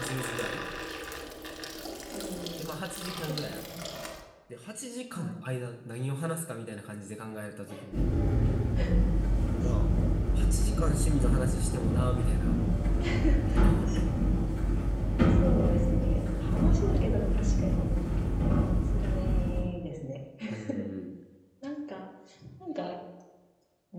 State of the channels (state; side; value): identical; both; correlation 1.00